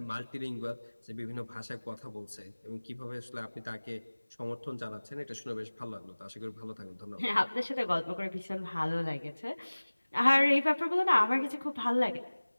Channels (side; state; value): both; inverted; correlation -1.00